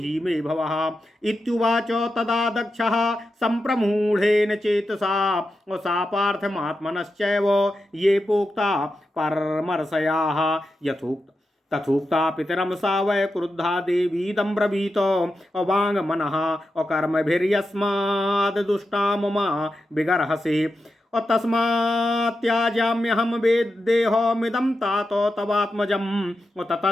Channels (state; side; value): normal; both; correlation 0.89